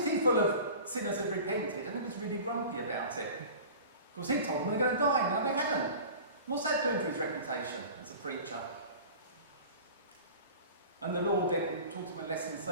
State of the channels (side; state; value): both; inverted; correlation -0.39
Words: full of sinners had repented, and he was really grumpy about it. Because he told them they're going to die, now they hadn't. What's that doing for his reputation as a preacher? And the Lord then taught him a lesson